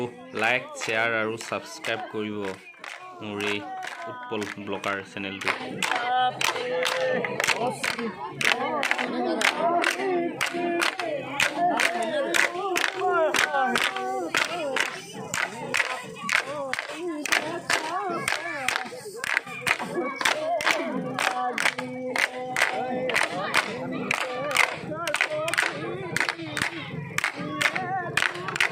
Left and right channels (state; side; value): identical; both; correlation 1.00